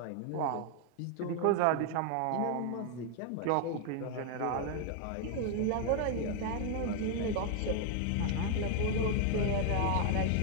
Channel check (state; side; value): different; both; correlation 0.00